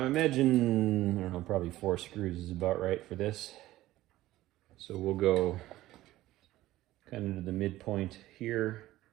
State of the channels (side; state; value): left; quieter; 15.9 dB